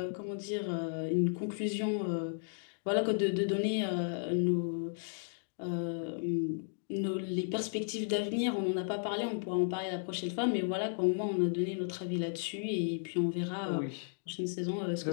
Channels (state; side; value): silent; right; digital silence